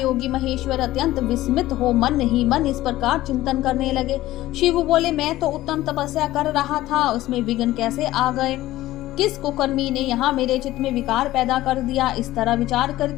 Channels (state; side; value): quieter; right; 15.9 dB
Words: महेश्वर अत्यंत विस्मित हो मन ही मन इस प्रकार चिंतन करने लगे। शिव बोले, मैं तो उत्तम तपस्या कर रहा था, उसमें विघ्न कैसे आ गए? किस कुकर्मी ने यहाँ मेरे चित्त में विकार पैदा कर दिया? इस तरह विचार